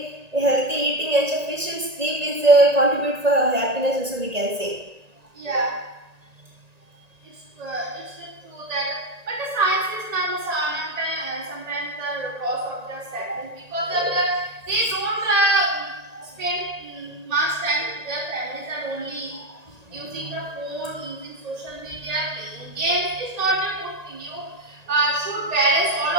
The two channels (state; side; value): late; left; 1.8 ms